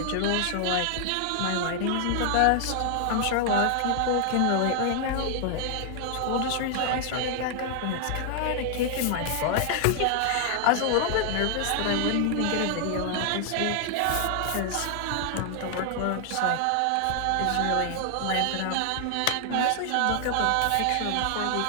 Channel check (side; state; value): both; different; correlation 0.00